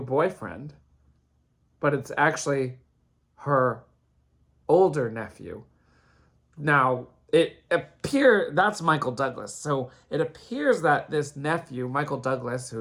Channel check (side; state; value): both; identical; correlation 1.00